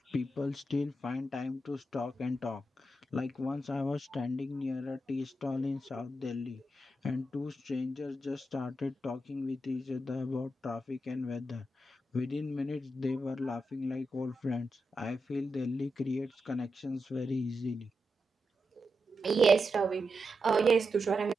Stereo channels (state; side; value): normal; both; correlation 0.87